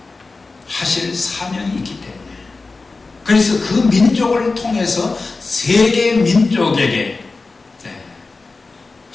하실 사명이 있기 때문에, 그래서 그 민족을 통해서 세계 민족에게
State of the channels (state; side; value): quieter; right; 3.8 dB